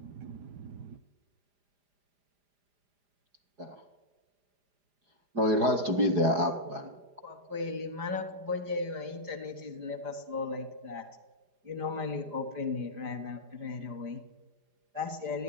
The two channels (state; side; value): late; left; 4.9 ms